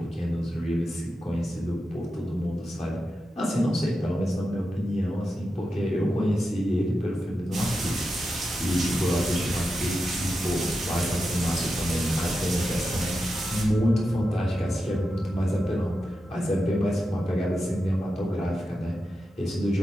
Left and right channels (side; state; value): both; normal; correlation 0.89